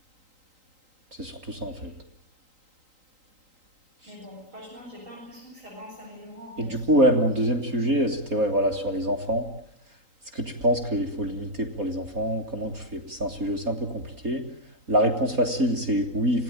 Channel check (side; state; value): left; late; 3.8 ms